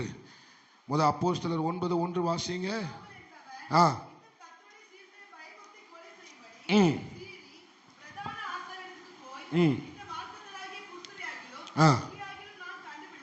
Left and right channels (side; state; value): both; identical; correlation 1.00